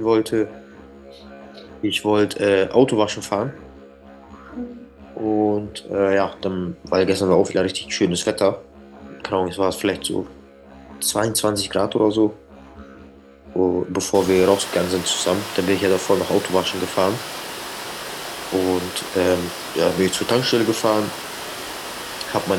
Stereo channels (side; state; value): both; identical; correlation 1.00